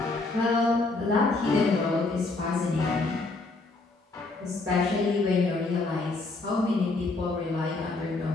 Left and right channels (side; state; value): right; quieter; 3.4 dB